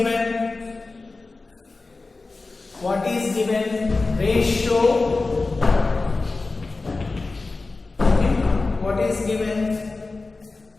What is given? Ratio. Okay, what is given?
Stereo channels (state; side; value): quieter; right; 3.6 dB